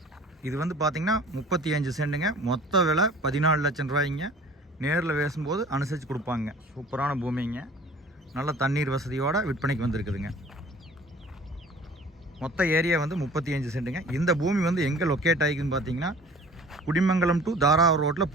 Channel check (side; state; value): both; normal; correlation 0.47